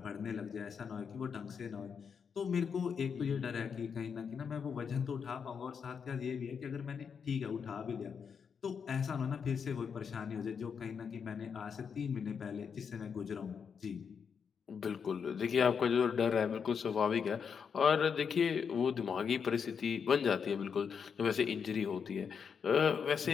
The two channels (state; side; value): quieter; right; 6.6 dB